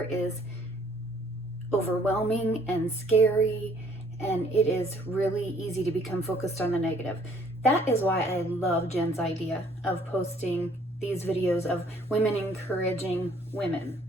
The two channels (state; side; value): normal; both; correlation 0.60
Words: is overwhelming and scary, and it is really easy to become focused on the negative. That is why I love Jen's idea of posting these videos of women encouraging women.